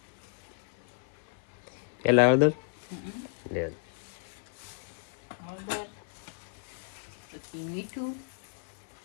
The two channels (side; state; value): right; silent; 56 dB below the other